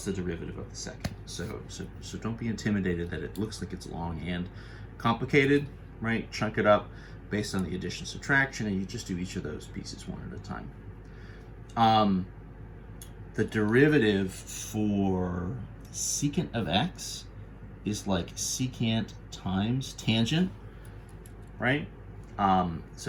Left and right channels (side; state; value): both; identical; correlation 1.00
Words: the derivative of the second. So don't be intimidated that it looks like it's long and complicated, right? Chunk it up based on the addition subtraction, and you just do each of those pieces one at a time. The derivative for secant of x is like secant times tangent, right?